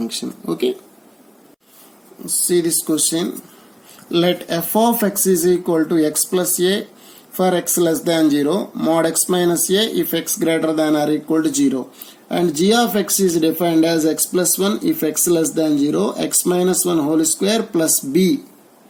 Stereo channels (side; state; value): both; identical; correlation 1.00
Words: Okay. See this question. Let f of x is equal to x plus a for x less than 0, mod x minus a if x greater than or equal to 0. And g of x is defined as x plus 1 if x less than 0, x minus 1 whole square plus b